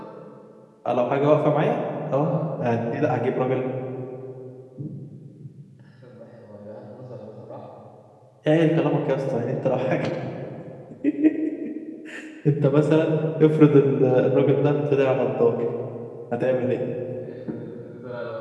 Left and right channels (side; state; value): both; identical; correlation 1.00